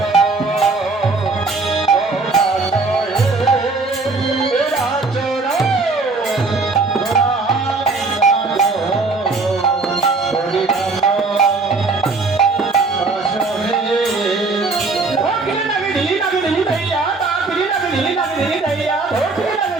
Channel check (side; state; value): left; quieter; 3.8 dB